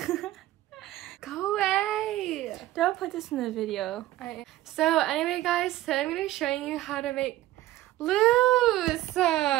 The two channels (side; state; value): left; quieter; 15.5 dB